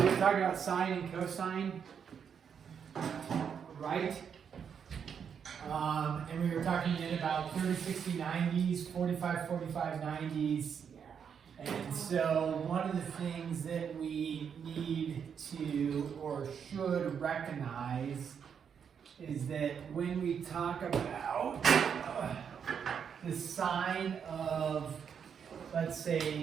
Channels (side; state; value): left; quieter; 7.3 dB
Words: talking about sine and cosine, right? And we were talking then about 30, 60, 90s, 45, 45, 90s. And so one of the things that we need to or should recognize is that when we talk about the sine of, let's